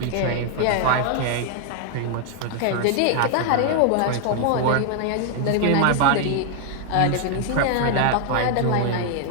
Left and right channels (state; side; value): different; both; correlation 0.00